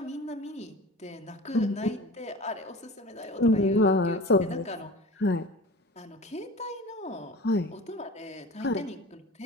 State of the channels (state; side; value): normal; both; correlation 0.37